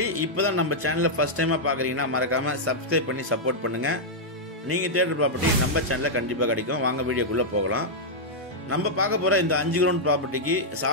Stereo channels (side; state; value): both; normal; correlation -0.05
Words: இப்பதான் நம்ம சேனலை ஃபர்ஸ்ட் டைமா பாக்குறீங்கன்னா மறக்காம சப்ஸ்கிரைப் பண்ணி சப்போர்ட் பண்ணுங்க. நீங்க தேடுற ப்ராப்பர்ட்டி நம்ம சேனல்ல கண்டிப்பா கிடைக்கும். வாங்க வீடியோக்குள்ள போகலாம். நம்ம பார்க்க போற இந்த 5 கிரவுண்ட் ப்ராப்பர்ட்டிக்கு